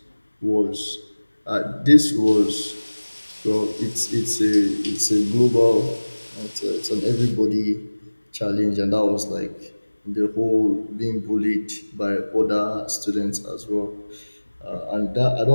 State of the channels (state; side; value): inverted; both; correlation -1.00